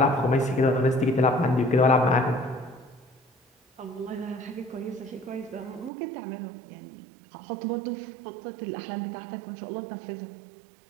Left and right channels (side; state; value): left; drops out; at 5.9 s